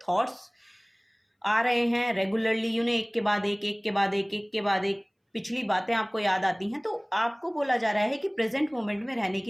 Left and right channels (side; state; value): both; identical; correlation 1.00